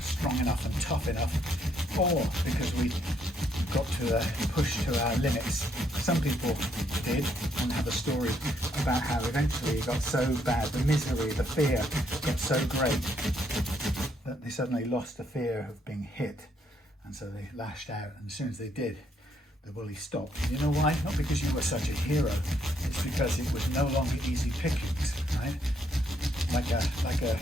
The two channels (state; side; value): normal; both; correlation 0.72